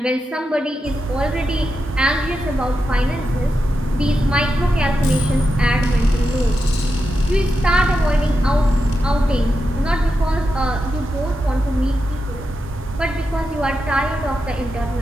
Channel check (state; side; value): normal; both; correlation 0.88